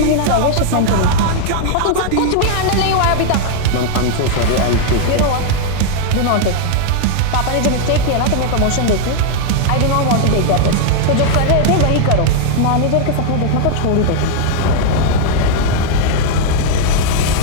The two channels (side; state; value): both; different; correlation 0.00